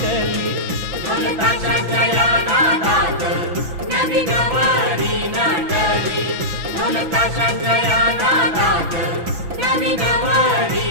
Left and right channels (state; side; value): late; left; 6.0 ms